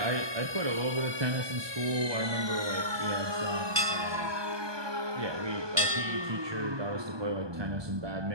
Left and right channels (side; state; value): left; late; 1.2 ms